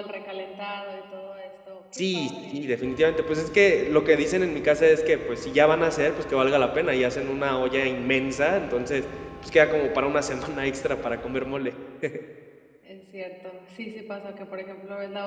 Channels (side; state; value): both; identical; correlation 1.00